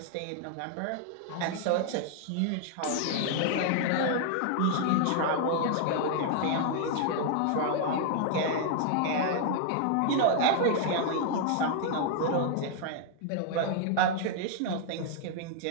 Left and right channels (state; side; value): different; both; correlation 0.00